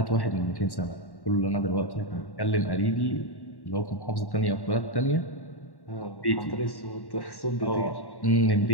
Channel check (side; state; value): right; late; 1.1 ms